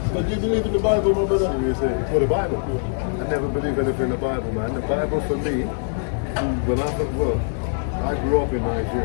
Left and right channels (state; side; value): silent; right; digital silence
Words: But do you believe in the Bible, my brother? Well, the Bible. I never believe anything in the Bible, man. The Bible for me, I grew up in